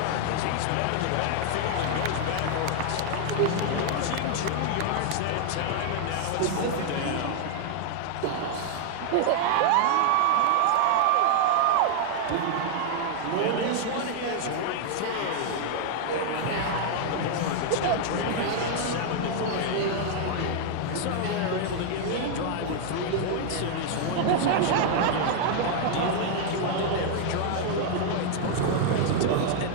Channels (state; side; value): different; both; correlation 0.00